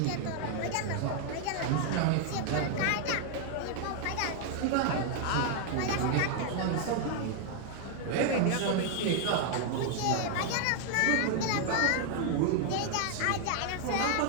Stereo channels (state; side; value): different; both; correlation 0.00